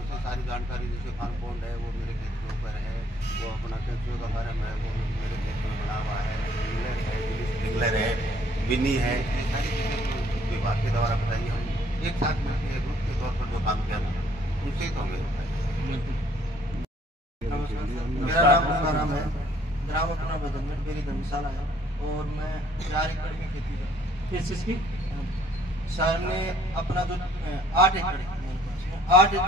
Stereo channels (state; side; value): normal; both; correlation 0.62